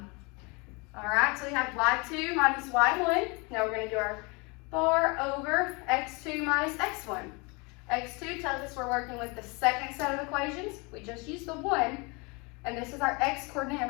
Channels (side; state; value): right; quieter; 29.1 dB